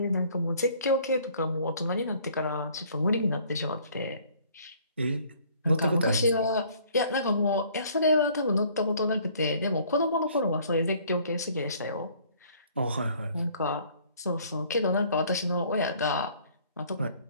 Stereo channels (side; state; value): both; inverted; correlation -0.58